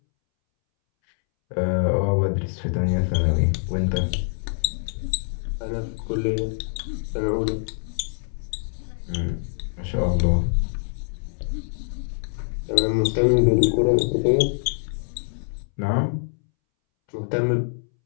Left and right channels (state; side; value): silent; right; 62 dB below the other